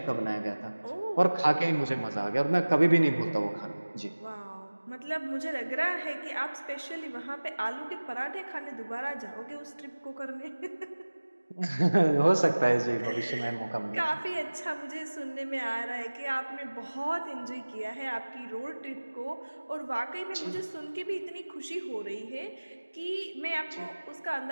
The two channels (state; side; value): inverted; both; correlation -1.00